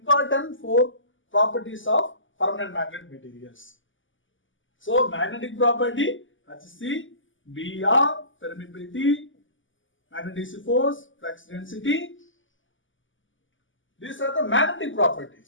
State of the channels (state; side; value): late; right; 0.57 ms